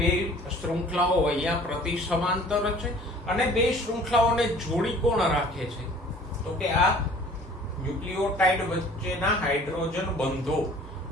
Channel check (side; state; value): both; normal; correlation 0.50